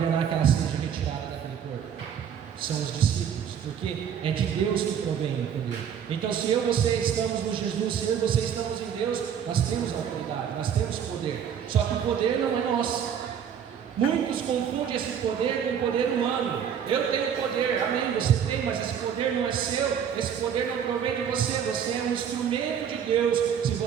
que ela seja retirada daquele corpo. São os discípulos, porque é de Deus que provém o poder. Então, se eu e você estamos no Jesus, se eu e você estamos em Deus, nós temos autoridade, nós temos poder. Só que o poder não é nosso. Muitos confundem esse poder com o poder humano. Eu tenho poder, amém, você tem, mas esse poder não é seu, esse poder não provém de você. Você é um instrumento de Deus. Se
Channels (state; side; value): quieter; left; 8.3 dB